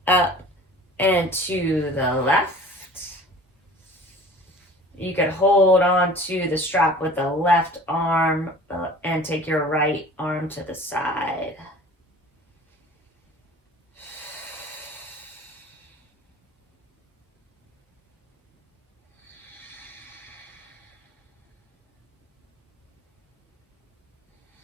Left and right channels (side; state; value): both; normal; correlation 0.44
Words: up and to the left. You could hold on to the strap with the left arm and take your right arm to the side.